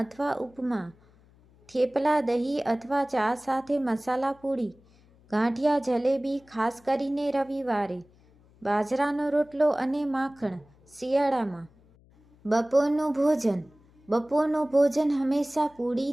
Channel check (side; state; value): left; noise; hum, 29 dB below the sound